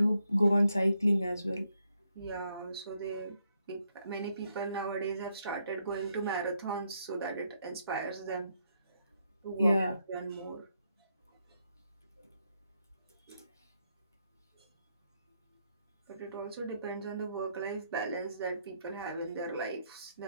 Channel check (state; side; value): inverted; both; correlation -0.77